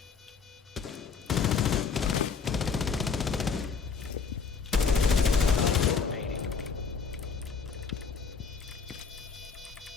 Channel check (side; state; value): right; quieter; 5.6 dB